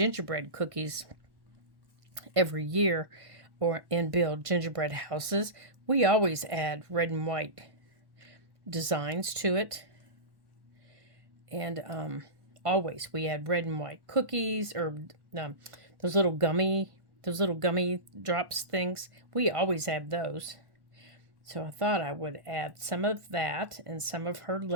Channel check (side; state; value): left; late; 1.1 ms